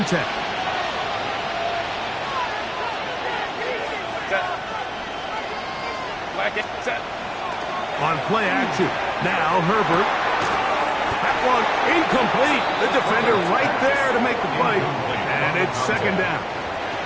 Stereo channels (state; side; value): identical; both; correlation 1.00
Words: 10. On play action, now Herbert. That one incomplete. The defender right there to make the play. And it's second down.